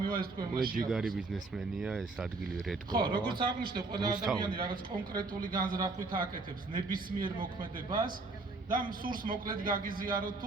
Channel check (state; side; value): quieter; left; 3.5 dB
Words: ეს თქვენ მაშინ? ჯიგარი ბიზნესმენია ეს ადგილი რედკო. ხო, როგორც აღნიშნე, ყველა ადამიანი რაღაც კონკრეტული განზრახვით აკეთებს ნებისმიერ მოქმედებას და სურს მოკლედ გაგიზიაროთ